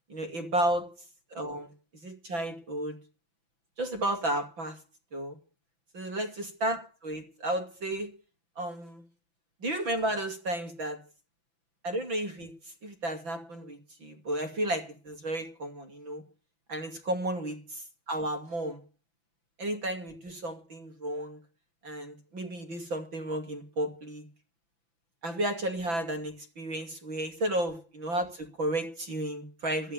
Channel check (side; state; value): left; late; 6.0 ms